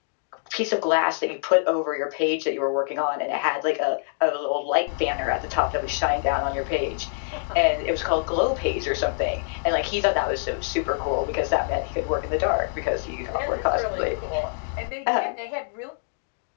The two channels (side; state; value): right; silent; digital silence